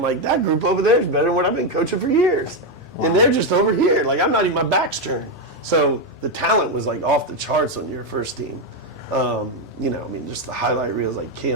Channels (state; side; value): normal; both; correlation 0.05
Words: like, that group over there is better than what I've been coaching for years. And they're just over here. Like, I'm not even, my back's turned. So the talent was, like, off the charts on your first team. Just the highlight reels, like